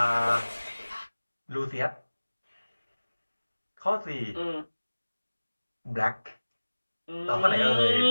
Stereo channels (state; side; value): inverted; both; correlation -1.00